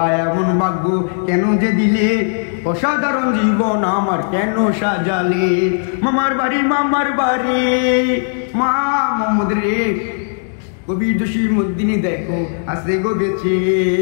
এমন ভাগ্য কেন যে দিলে, অসাধারণ জীবন আমার কেন সাজালে। মামার বাড়ি মা মোহাম্মদ রে। কবি জসিমউদ্দিন দেখো আছে গো বেঁচে,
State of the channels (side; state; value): right; silent; digital silence